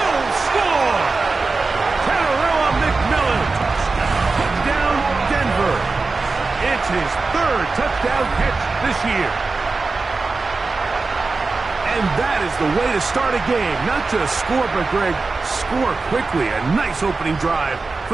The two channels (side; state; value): left; quieter; 3.9 dB